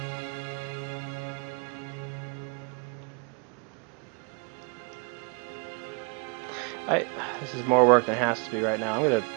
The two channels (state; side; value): quieter; left; 34.3 dB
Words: This is more work than it has to be right now. I'm gonna